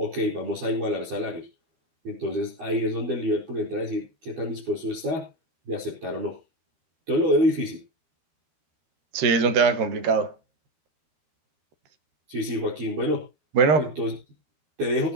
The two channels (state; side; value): late; left; 13 ms